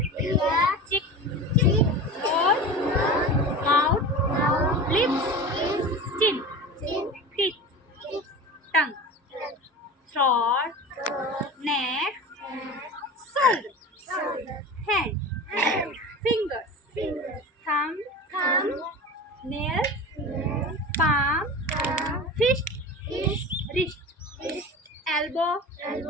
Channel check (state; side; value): normal; both; correlation 0.32